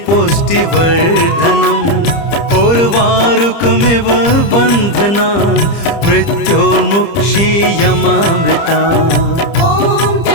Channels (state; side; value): late; right; 30 ms